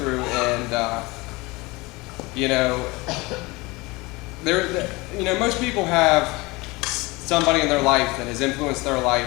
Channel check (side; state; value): right; quieter; 23.6 dB